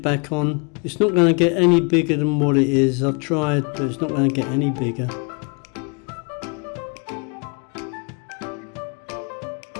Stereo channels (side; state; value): right; quieter; 34.8 dB